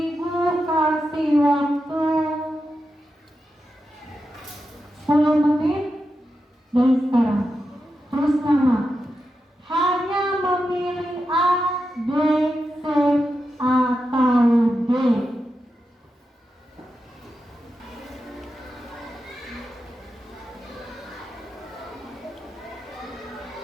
kasih waktu 10 menit dari sekarang. Terus nama. Hanya memilih A, B, C, atau D.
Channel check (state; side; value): normal; both; correlation 0.88